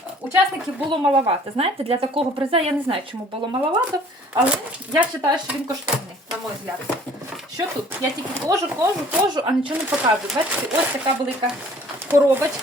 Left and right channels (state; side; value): normal; both; correlation 0.53